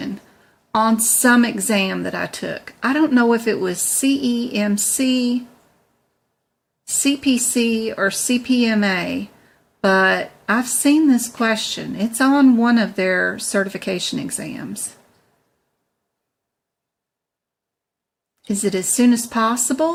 on some exam that I took. I don't know if it was CEMC, CPC, or CPMA, but I've seen this question. It's on one of their certification exams. Is it as soon as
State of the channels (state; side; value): identical; both; correlation 1.00